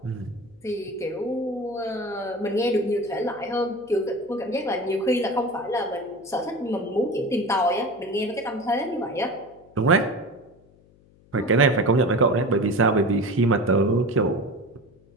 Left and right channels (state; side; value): noise; left; hum, 29 dB below the sound